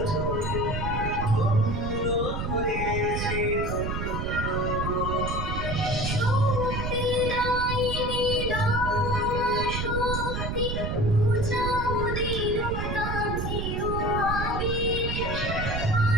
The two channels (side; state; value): right; noise; rumble, 2 dB below the sound